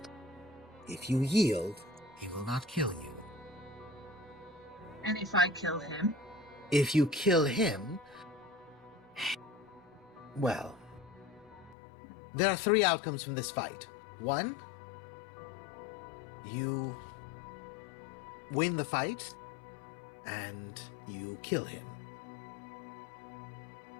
If you yield, he will not kill you. And if I kill him? If you kill him, well, there are 3 outcomes from this fight. 1, you win the fight, and you kill him.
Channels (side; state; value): right; drops out; at 11.8 s